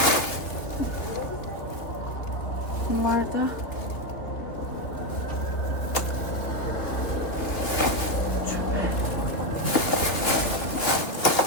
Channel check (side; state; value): right; late; 2.7 ms